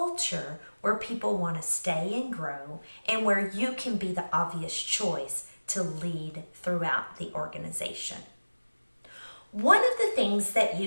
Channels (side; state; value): both; inverted; correlation -1.00